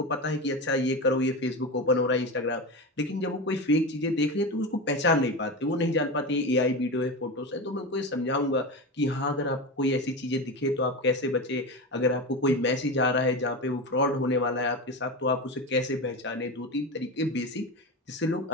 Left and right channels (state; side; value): normal; both; correlation 0.22